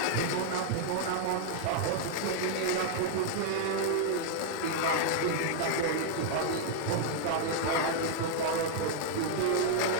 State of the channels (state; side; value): different; both; correlation 0.00